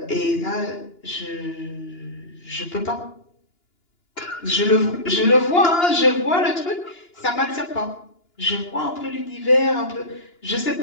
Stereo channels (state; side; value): late; right; 2.9 ms